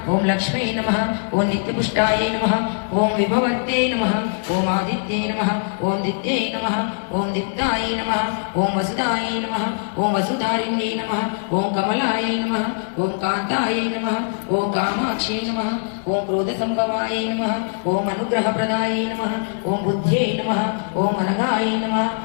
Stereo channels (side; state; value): right; silent; digital silence